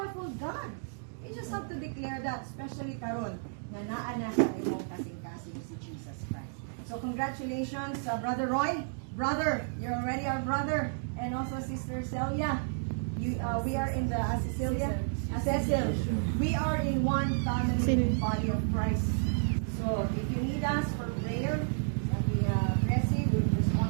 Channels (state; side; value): silent; left; digital silence